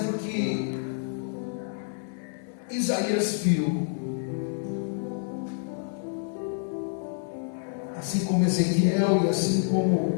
que Isaías viu, assim como Ezequiel e assim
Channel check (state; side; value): silent; right; digital silence